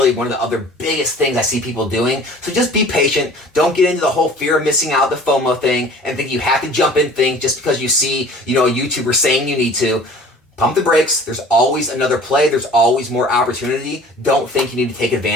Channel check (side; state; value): both; normal; correlation 0.47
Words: one of the other biggest things I see people doing. So just be patient. Don't get into the whole fear of missing out, the FOMO thing, and think you have to jump in things just because you see a YouTuber saying you need to. Pump the brakes. There's always another play. There's always more opportunity. Don't think you need to take